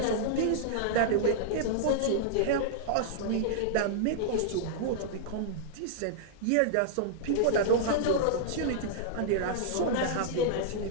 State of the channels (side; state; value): both; different; correlation -0.01